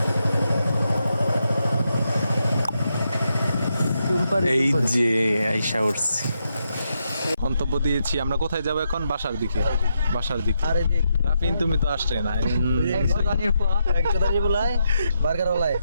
এই যে আইসা উঠছি মন্তব্য দিয়েছি আমরা কোথায় যাবো এখন বাসার দিকে আরে দেখ রাফিন তুমি তো আসলে না 100 দানি বলাই বার্গার ওলাই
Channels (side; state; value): both; inverted; correlation -0.82